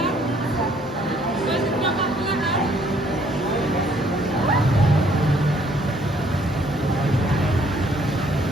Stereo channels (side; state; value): both; normal; correlation 0.64